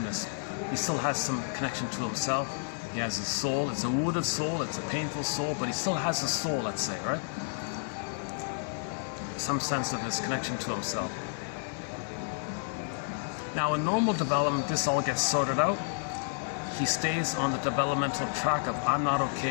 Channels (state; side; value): silent; right; 57 dB below the other